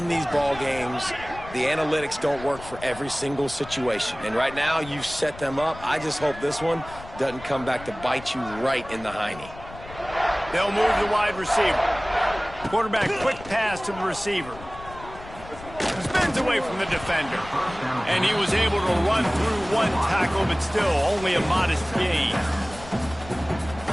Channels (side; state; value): left; noise; rumble, 16 dB below the sound